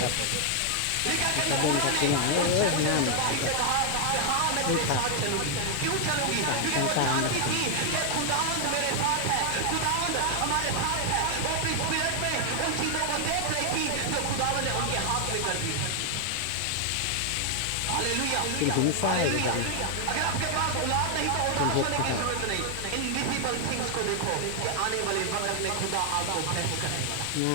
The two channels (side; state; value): both; different; correlation 0.00